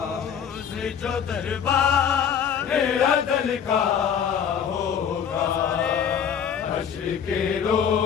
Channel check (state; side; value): quieter; right; 7.9 dB